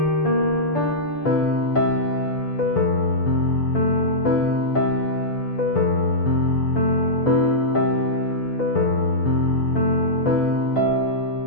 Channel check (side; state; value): right; late; 6.8 ms